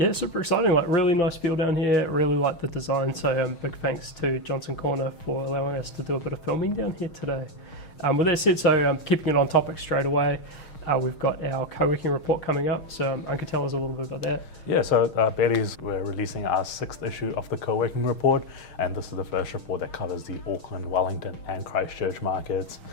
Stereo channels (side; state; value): right; late; 6.4 ms